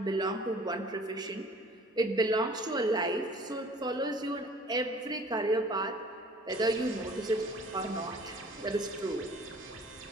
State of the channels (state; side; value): normal; both; correlation 0.50